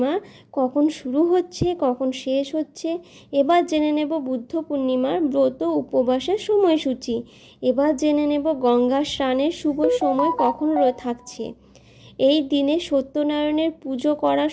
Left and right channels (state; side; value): identical; both; correlation 1.00